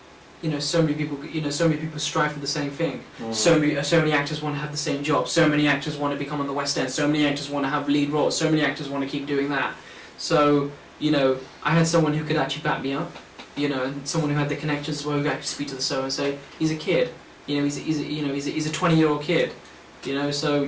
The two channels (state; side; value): identical; both; correlation 1.00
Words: many people strive for the same thing. So many actors want to have the same job. So many actors want to become on the West End. So many actors want to have lead roles. So many actors want to keep doing that. So I had someone who could actually back me up. And someone who had the connections as well, who could actually speak to the show and say, he's a kid. He's a 20-year-old kid. So